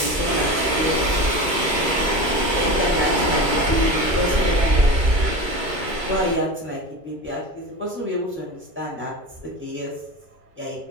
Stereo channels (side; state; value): left; late; 2.3 ms